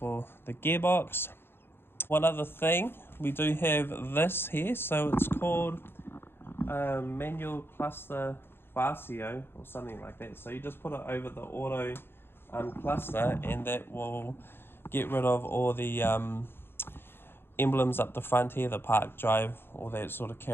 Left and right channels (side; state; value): right; late; 0.11 ms